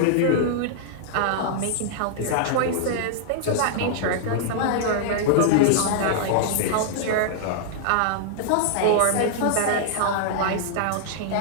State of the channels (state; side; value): different; both; correlation -0.01